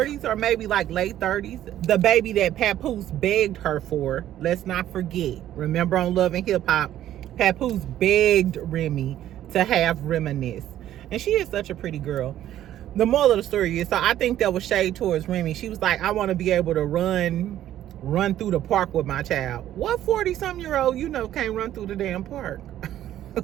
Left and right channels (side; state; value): left; quieter; 12.3 dB